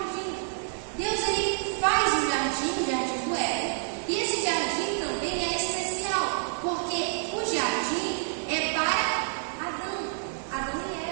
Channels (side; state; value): left; silent; 59 dB below the other